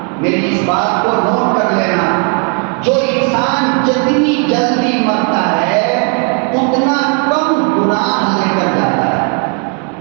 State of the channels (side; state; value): left; quieter; 39.5 dB